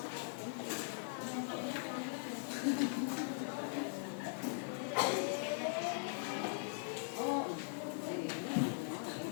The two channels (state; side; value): silent; right; digital silence